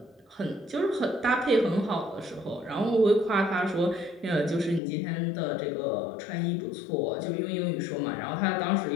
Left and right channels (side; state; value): right; drops out; at 4.8 s